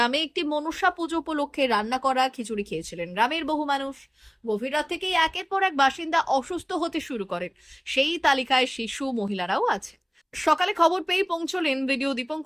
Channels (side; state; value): both; identical; correlation 1.00